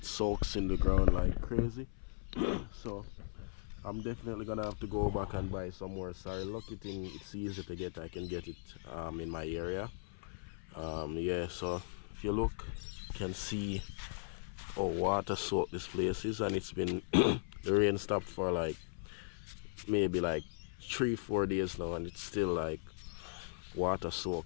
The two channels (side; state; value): right; silent; 53 dB below the other